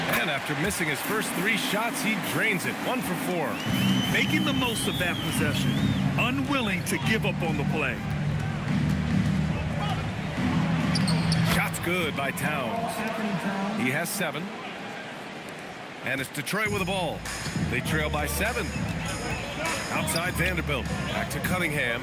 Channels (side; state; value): both; identical; correlation 1.00